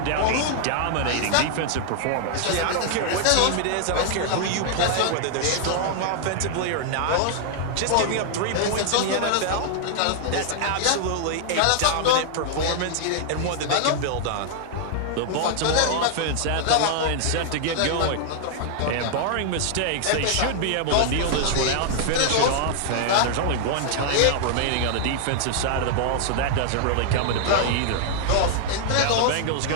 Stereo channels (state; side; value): different; both; correlation 0.00